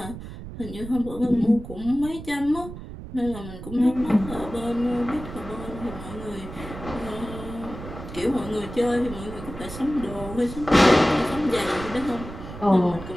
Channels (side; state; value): right; noise; rumble, 12 dB below the sound